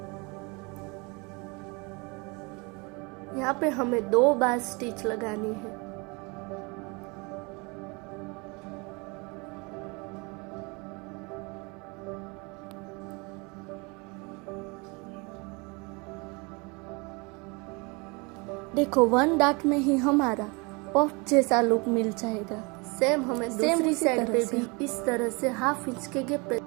यहाँ पे हमें 2 बार स्टिच लगानी है। देखो 1 डॉट में ही हमारा पफ जैसा लुक मिल जाएगा। सेम हमें दूसरी साइड पे भी इस तरह से हाफ इंच के गैप पे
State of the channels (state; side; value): quieter; left; 28.7 dB